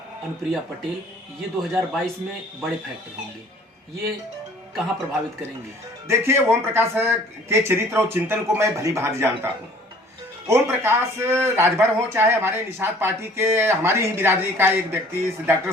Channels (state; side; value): normal; both; correlation 0.53